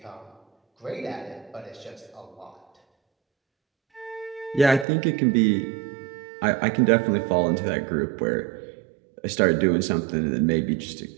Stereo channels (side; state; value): left; drops out; at 4.9 s